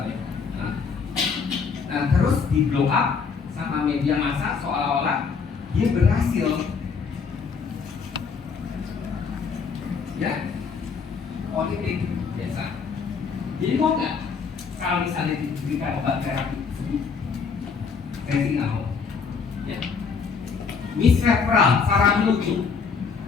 Nah, terus di blow up sama media massa seolah-olah dia berhasil. Ya, politik biasa. Jadi mau nggak kalau misalnya diberikan obat terapi? Saya sih nggak mau. Ya. Misreferral, salah menuju.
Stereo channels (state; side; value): quieter; right; 5.6 dB